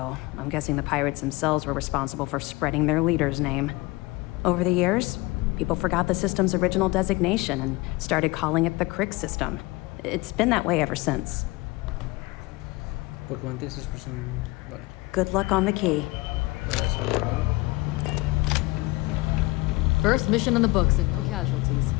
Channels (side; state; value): right; quieter; 22.3 dB